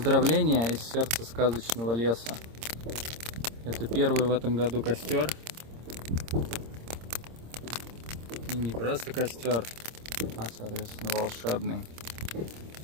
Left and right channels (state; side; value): late; left; 26 ms